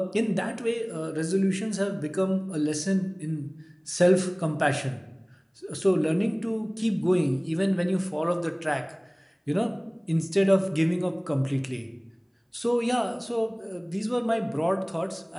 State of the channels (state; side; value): identical; both; correlation 1.00